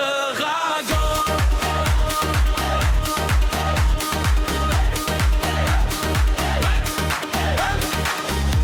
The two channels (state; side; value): identical; both; correlation 1.00